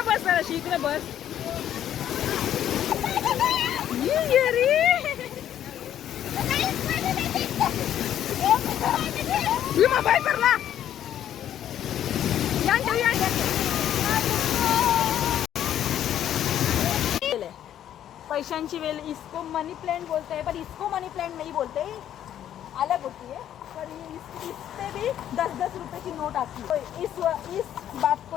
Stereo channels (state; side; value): quieter; right; 10.8 dB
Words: बस अशी इकडे बस मोबाईल करला पैशांची वेल इसको मनी प्लांट बोलते हैं पर इसको मनी प्लांट नहीं बोलते अलग होती है पर इससे भी 10-10 रुपए की नोट आती है तो इस बात